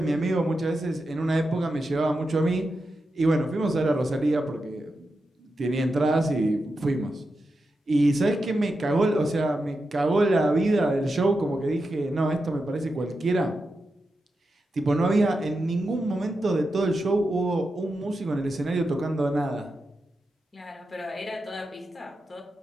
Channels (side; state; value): both; normal; correlation 0.89